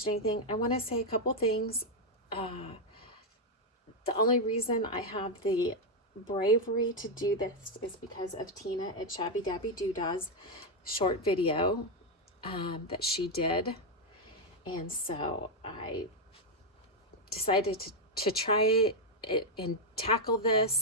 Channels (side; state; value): both; normal; correlation 0.02